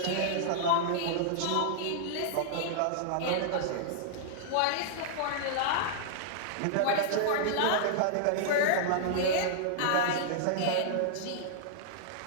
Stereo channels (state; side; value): different; both; correlation -0.01